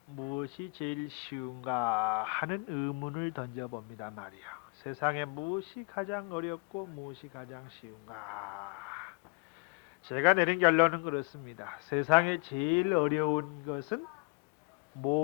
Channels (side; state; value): right; quieter; 31.7 dB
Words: 무엇이 제일 쉬운가 하는 의문을 던져봅니다 말이야. 세상에 무엇이 가장 어렵고 무엇이 가장 쉬운가. 제가 내린 결론은 그렇습니다. 세상에 제일 어려운 것은